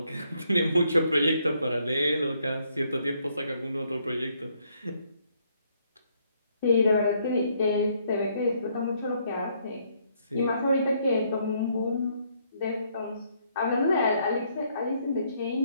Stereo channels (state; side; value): inverted; both; correlation -0.71